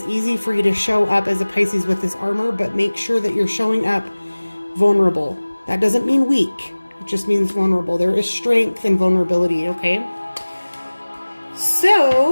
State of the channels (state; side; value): inverted; both; correlation -1.00